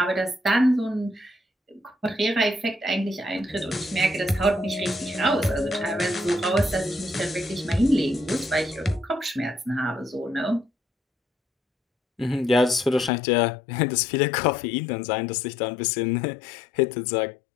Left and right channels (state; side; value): drops out; right; at 13.1 s